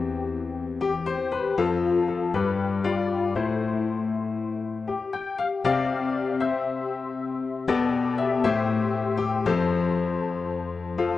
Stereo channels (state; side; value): quieter; right; 4.1 dB